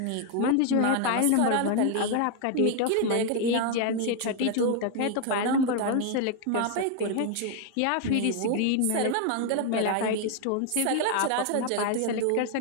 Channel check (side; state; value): both; different; correlation 0.01